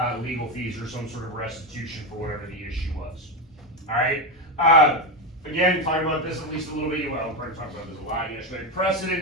legal fees or some sort of restitution for whatever the issue was. All right. Again, talking about this at least a little bit. Well, we're talking about this a lot yesterday.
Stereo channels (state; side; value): normal; both; correlation 0.12